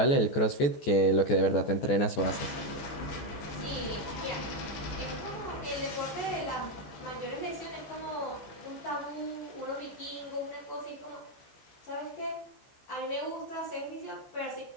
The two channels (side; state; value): right; late; 14 ms